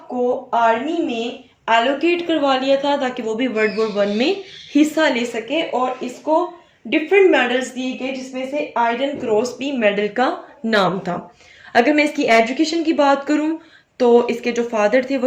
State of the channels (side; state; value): both; identical; correlation 1.00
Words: को आर्मी में एलोकेट करवा लिया था ताकि वो भी वर्ल्ड वॉर वन में हिस्सा ले सके, और इसको डिफरेंट मेडल्स दिए गए जिसमें से आयरन क्रॉस भी मेडल का नाम था। अगर मैं इसकी एजुकेशन की बात करूं तो इसके जो फादर थे